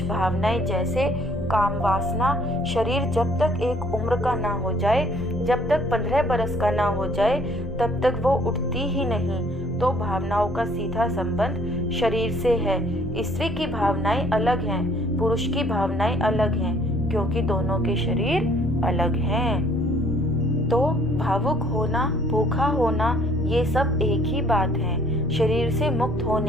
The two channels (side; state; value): both; normal; correlation 0.60